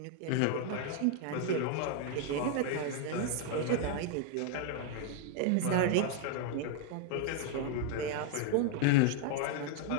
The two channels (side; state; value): both; different; correlation 0.01